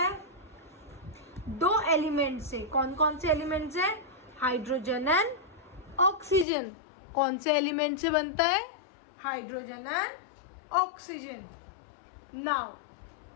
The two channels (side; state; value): right; drops out; at 6.5 s